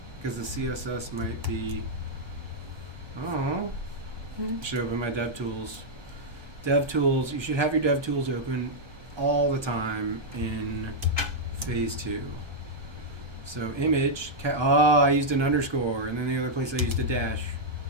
because the CSS might be. Oh, should open my DevTools. DevTools. You should have your DevTools open all the time in phase 2. So image. I used an underscore, and then the other place I used a dash.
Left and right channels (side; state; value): left; late; 1.2 ms